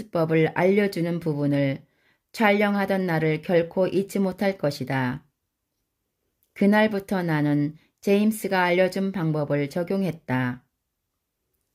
알려주는 부분을 촬영하던 날을 결코 잊지 못할 것이다. 그날부터 나는 제임스가 알려준 방법을 적용했다.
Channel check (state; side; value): identical; both; correlation 1.00